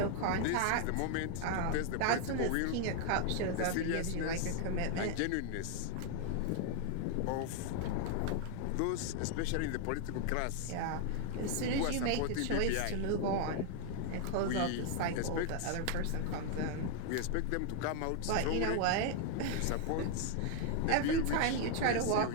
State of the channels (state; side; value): different; both; correlation 0.00